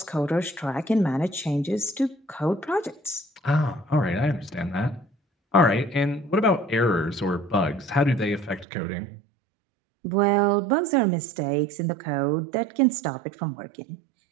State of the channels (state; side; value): drops out; left; at 8.7 s